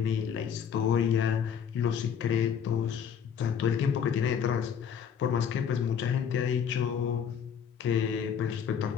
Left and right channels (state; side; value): quieter; right; 7.7 dB